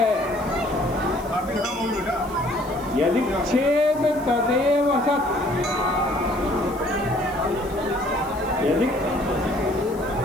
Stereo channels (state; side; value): noise; left; hiss, 22 dB below the sound